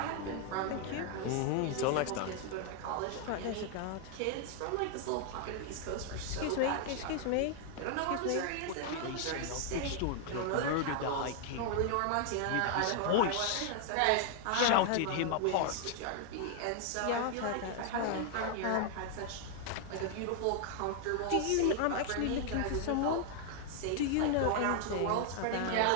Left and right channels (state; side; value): different; both; correlation 0.00